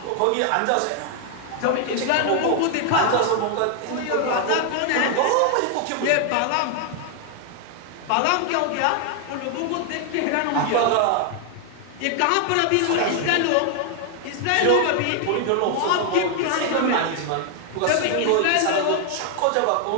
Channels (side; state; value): both; different; correlation 0.00